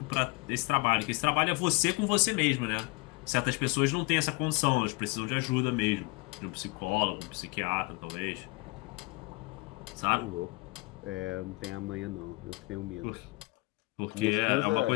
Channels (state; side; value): quieter; right; 25.9 dB